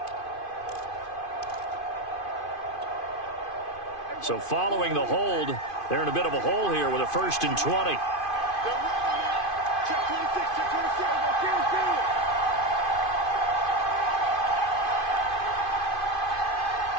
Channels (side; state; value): right; late; 2.5 ms